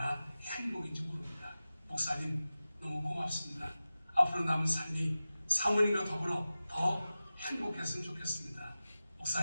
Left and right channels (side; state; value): both; inverted; correlation -0.95